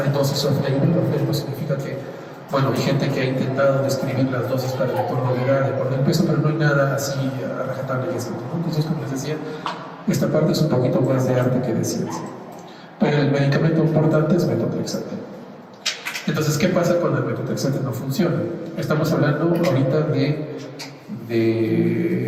dosis off-label. Off-label significa que, bueno, hay gente que ha intentado describir las dosis para el entorno de edad, de por el peso, pero no hay nada así a rajatabla y escrito, ¿no? Entonces, como les decía, esta parte es un poquito más de arte que de ciencia. Pero el medicamento importante es metotrexate. Entonces, ¿qué pasa cuando el metotrexate no funciona? Estamos hablando ahorita de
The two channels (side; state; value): both; identical; correlation 1.00